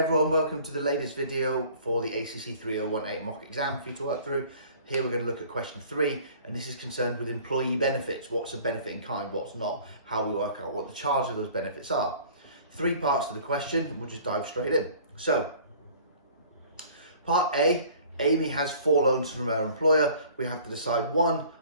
welcome to the latest video for the ACC3018 Mock exam for you to work through. Here we're going to look at question 3, and this is concerned with employee benefits. What's a benefit in kind, what's not, how we work out what the charge of those benefits are. 3 parts to the question, and we'll just dive straight in. So, part A, Amy has 4 loans from her employer. We have to decide 1,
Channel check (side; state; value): both; inverted; correlation -0.50